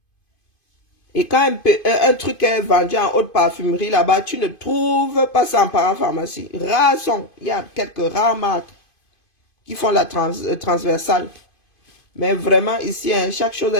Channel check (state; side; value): late; right; 2.5 ms